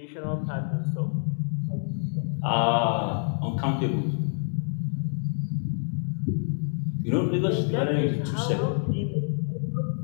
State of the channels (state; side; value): silent; right; digital silence